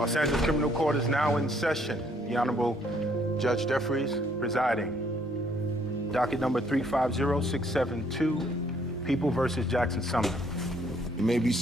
Angeles Criminal Court is now in session. The Honorable Judge Jeffries presiding. Docket number 350672, People versus Jackson Sumner. You may be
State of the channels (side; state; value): both; normal; correlation 0.66